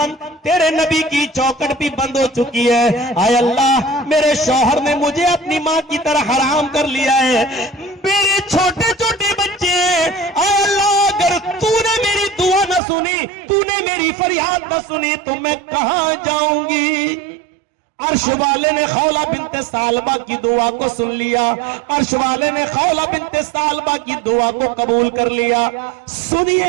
تیرے نبی کی چوکھٹ بھی بند ہو چکی ہے۔ اے اللہ، میرے شوہر نے مجھے اپنی ماں کی طرح حرام کر لیا ہے، میرے چھوٹے چھوٹے بچے ہیں۔ اے اللہ، اگر تو نے میری دعا نہ سنی، تو نے میری فریاد نہ سنی تو میں کہاں جاؤں گی؟ عرش والے نے خولہ بنت ثعلبہ کی دعا کو سن لیا، عرش والے نے خولہ بنت ثعلبہ کی دعا کو قبول کر لیا۔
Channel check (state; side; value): drops out; left; at 12.8 s